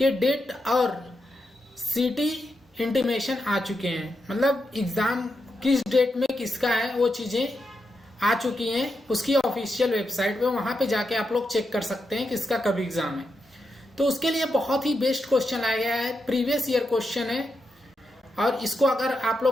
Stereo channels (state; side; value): normal; both; correlation 0.86